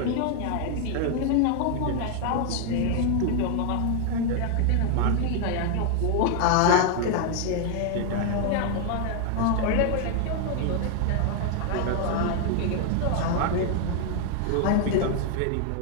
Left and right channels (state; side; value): different; both; correlation 0.00